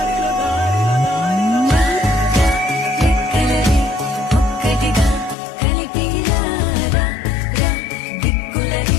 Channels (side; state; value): right; drops out; at 5.4 s